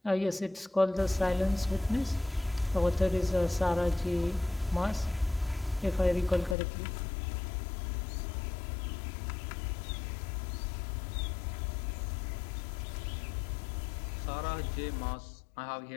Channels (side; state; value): right; drops out; at 6.6 s